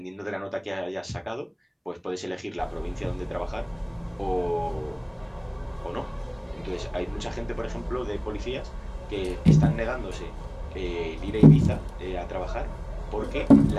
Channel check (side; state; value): both; identical; correlation 1.00